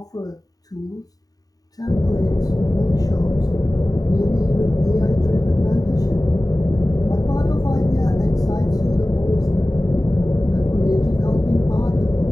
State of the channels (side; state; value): right; late; 0.18 ms